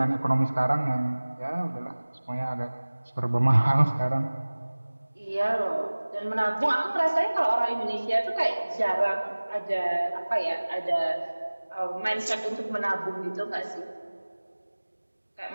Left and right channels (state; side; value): inverted; both; correlation -1.00